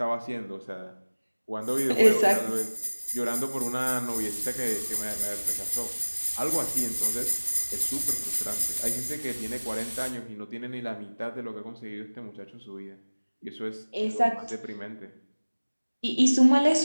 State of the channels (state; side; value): inverted; both; correlation -1.00